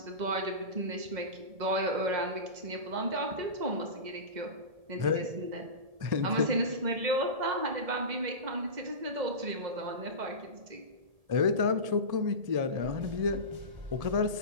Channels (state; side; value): late; left; 1.7 ms